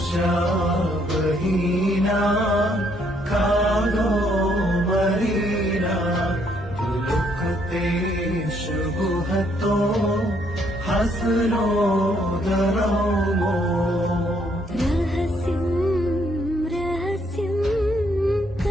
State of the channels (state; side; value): normal; both; correlation 0.69